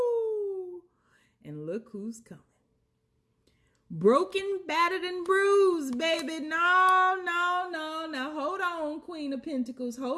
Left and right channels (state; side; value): identical; both; correlation 1.00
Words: And look who's coming. Broken, battered, and bruised, baby. No. Now, hold on, Queen of Pentacles.